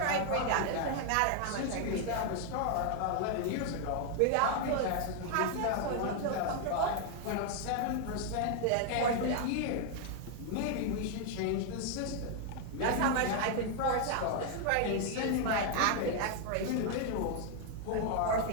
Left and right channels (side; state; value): both; different; correlation 0.00